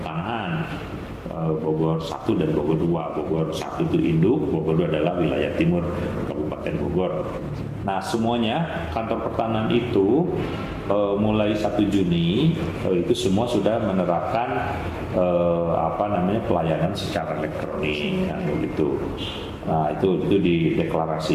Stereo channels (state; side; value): identical; both; correlation 1.00